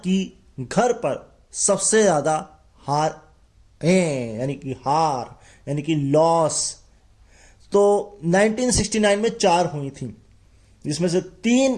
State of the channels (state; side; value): identical; both; correlation 1.00